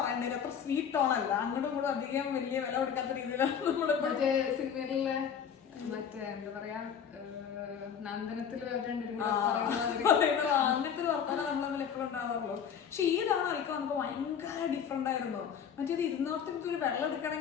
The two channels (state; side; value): quieter; right; 7.7 dB